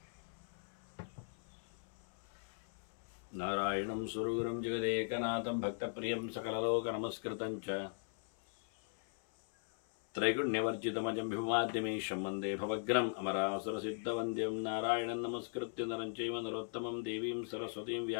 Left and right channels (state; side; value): silent; right; 52 dB below the other